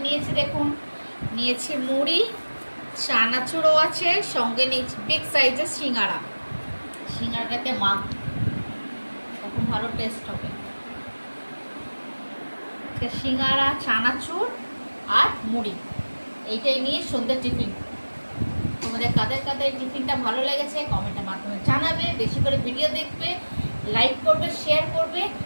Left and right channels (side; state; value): both; inverted; correlation -1.00